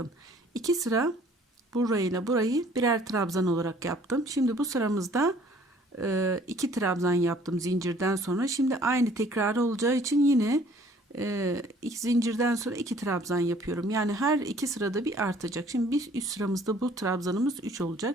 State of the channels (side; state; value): both; normal; correlation 0.56